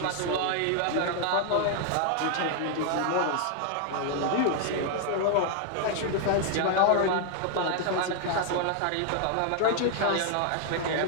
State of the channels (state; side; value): different; both; correlation 0.00